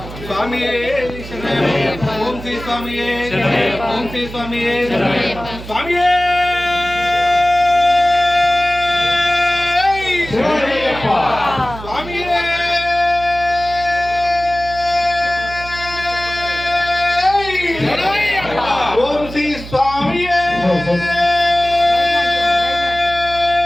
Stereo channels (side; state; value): right; noise; hum, 13 dB below the sound